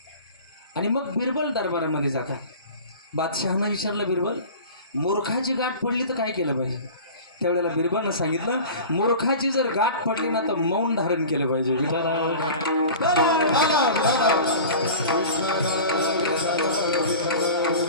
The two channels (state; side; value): inverted; both; correlation -0.37